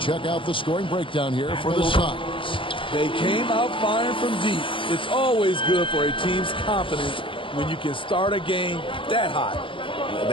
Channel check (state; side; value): late; right; 0.25 ms